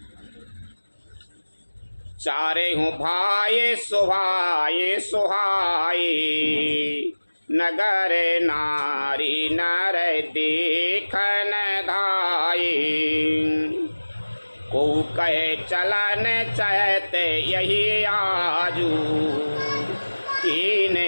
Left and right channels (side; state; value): both; inverted; correlation -1.00